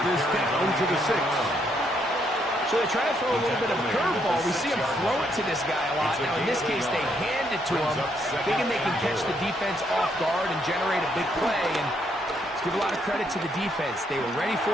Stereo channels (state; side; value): normal; both; correlation 0.73